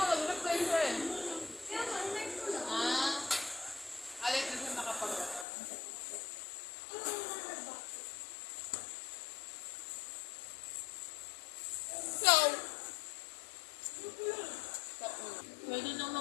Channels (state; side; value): drops out; right; at 5.5 s